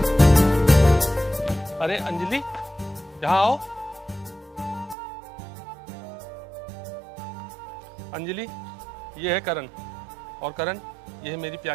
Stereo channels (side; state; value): left; drops out; at 5.0 s